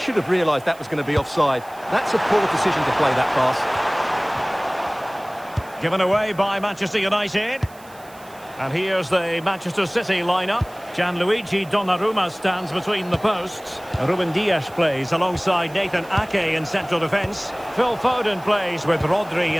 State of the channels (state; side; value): noise; right; hiss, 24 dB below the sound